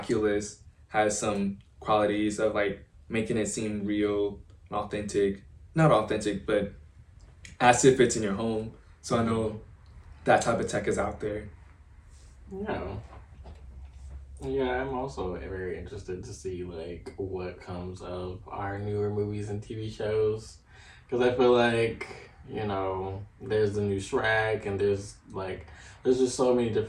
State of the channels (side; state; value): both; identical; correlation 1.00